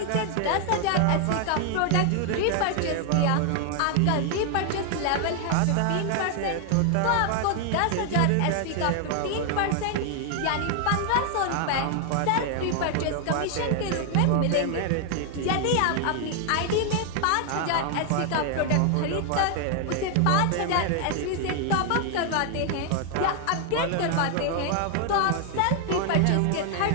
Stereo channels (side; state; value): both; different; correlation 0.00